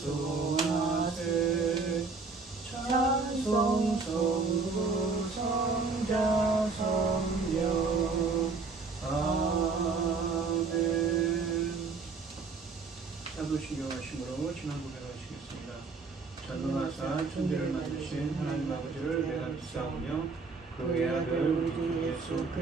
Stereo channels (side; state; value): left; quieter; 4.4 dB